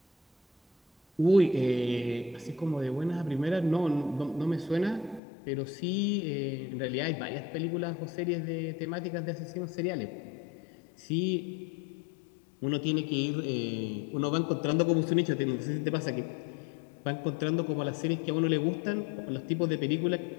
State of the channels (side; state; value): right; drops out; at 5.2 s